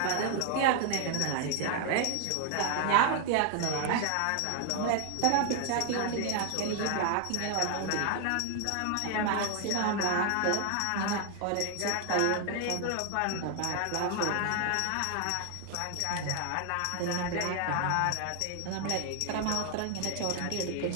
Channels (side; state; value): both; different; correlation 0.00